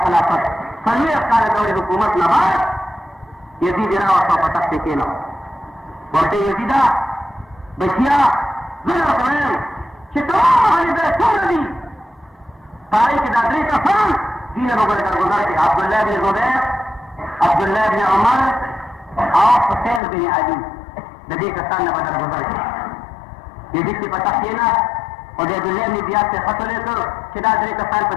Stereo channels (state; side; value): drops out; right; at 20.0 s